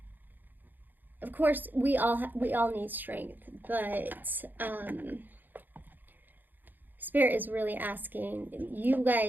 of course, we all need strength, but Spirit is really asking you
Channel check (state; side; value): late; left; 0.088 ms